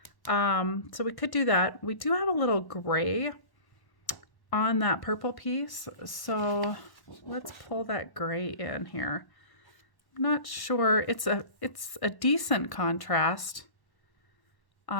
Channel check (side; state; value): right; late; 1.1 ms